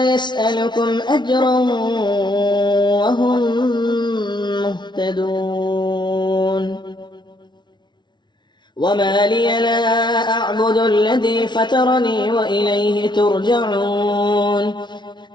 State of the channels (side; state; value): right; late; 0.21 ms